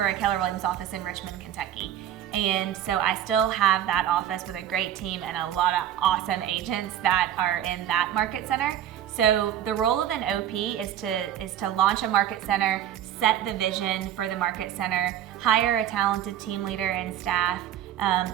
Keller Williams office in Richmond, Kentucky. And so I still have that office with a great team and a lot of awesome agents that are in that market center. So the role of an OP is to launch a market center, set the vision for the market center, hire a talented team leader and staff,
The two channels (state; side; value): quieter; left; 10.9 dB